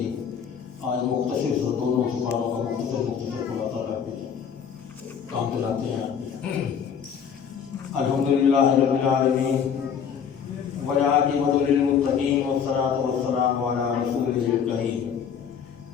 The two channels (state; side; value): quieter; right; 7.5 dB